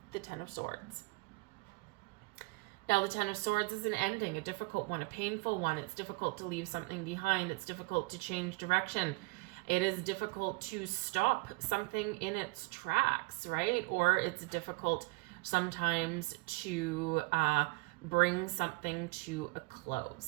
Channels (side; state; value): left; quieter; 26.2 dB